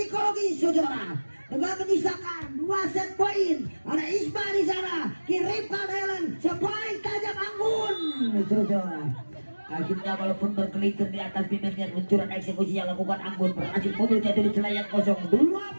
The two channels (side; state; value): both; inverted; correlation -1.00